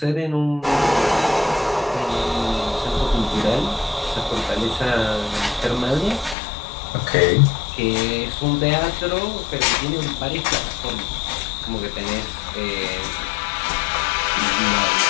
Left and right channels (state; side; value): drops out; right; at 6.4 s